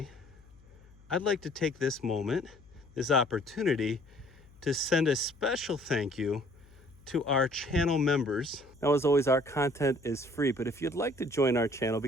I'd like to take this moment, this opportunity, to send a special thank you to our channel members. Now, as always, our content is free, but if you'd like to join our channel,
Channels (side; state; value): left; noise; hum, 25 dB below the sound